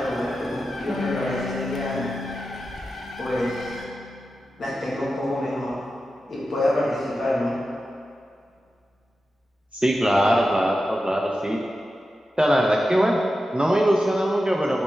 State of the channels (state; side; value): normal; both; correlation 0.91